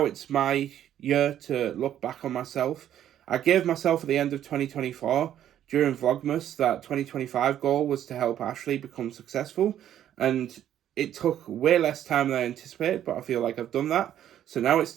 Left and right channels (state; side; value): quieter; left; 11.0 dB